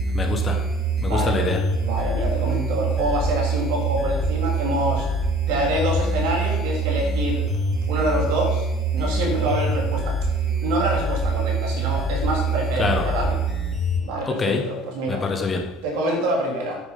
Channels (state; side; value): normal; both; correlation 0.50